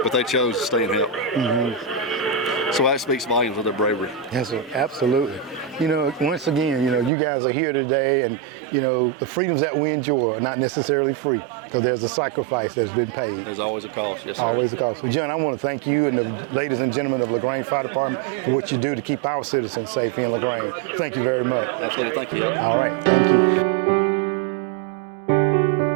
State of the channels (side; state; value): left; drops out; at 7.1 s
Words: but they chose to stay and help. Mm-hmm. So that speaks volumes of their bravery. Yes, sir. Absolutely. Once again, you guys are here today, and, the freedoms that we enjoy are not necessarily free, because there's a sacrifice that's been paid. There's always a cost, yes, sir. Always a cost. Well, John, I want to thank you and the ladies and gentlemen of LaGrange Fire Department for what you do to keep our citizens safe in LaGrange. Thank you very much. Absolutely. Thank you. All right. Thank you.